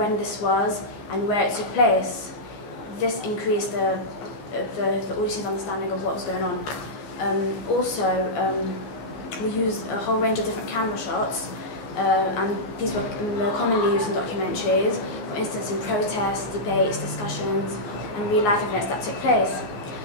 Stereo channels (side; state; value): right; late; 14 ms